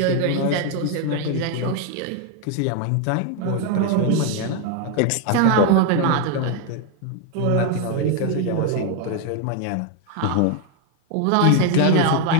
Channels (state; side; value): different; both; correlation 0.01